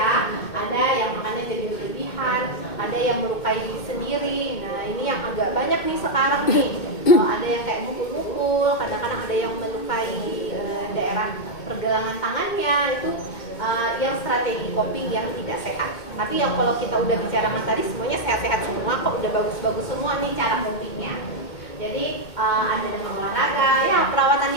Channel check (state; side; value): late; right; 2.2 ms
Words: Ada yang makannya jadi berlebihan, ada yang melukai diri sendiri. Nah, ini yang agak banyak nih sekarang nih. Ada yang kayak mukul-mukul, kadang-kadang ada yang melukai daerah pergelangan tangannya. Itu yang strategi coping yang tidak sehat. Tapi yang kalau kita udah bicarakan tadi semuanya sehat-sehat semua, kok udah bagus-bagus semua nih cara copingnya. Jadi ada dengan olahraga, ya perawatan